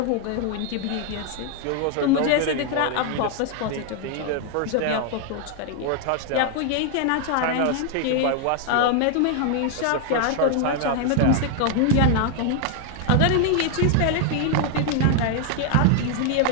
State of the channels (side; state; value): both; different; correlation 0.00